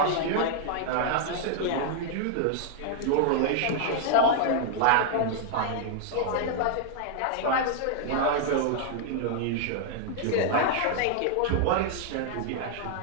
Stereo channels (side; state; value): both; different; correlation 0.00